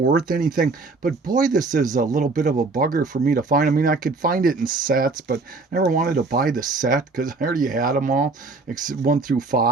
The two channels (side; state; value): left; quieter; 3.8 dB